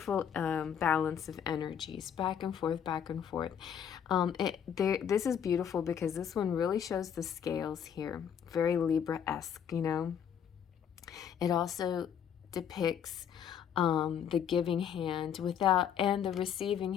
balance of energies, back and forth, back and forth. This is beautiful because this one really shows the scales here, very Libra-esque, you know. It also depicts the giving hand and the receiving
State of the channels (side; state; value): right; quieter; 8.5 dB